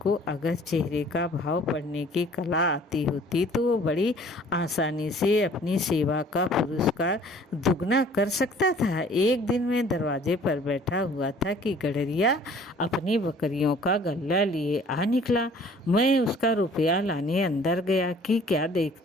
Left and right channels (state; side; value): normal; both; correlation 0.53